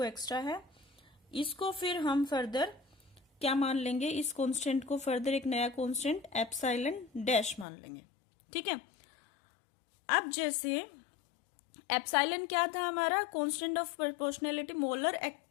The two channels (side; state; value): right; drops out; at 7.7 s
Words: एक्स्ट्रा है, इसको फिर हम फर्दर क्या मान लेंगे, इस कांस्टेंट को फर्दर एक नया कांस्टेंट एप्सिलॉन डैश मान लेंगे। ठीक है, अब जैसे एप्सिलॉन क्या था हमारा, constant of proportionality, molar